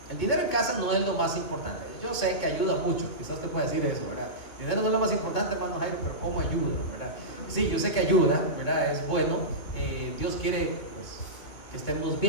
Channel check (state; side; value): late; right; 2.7 ms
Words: El dinero en casa no es lo más importante. Yo sé que ayuda mucho, quizás te pueda decir eso, ¿verdad? El dinero no es lo más importante, hermano Jairo, pero ¿cómo ayuda, verdad? Sí, yo sé que ayuda, ¿verdad? Es bueno. Dios quiere, pues, que estemos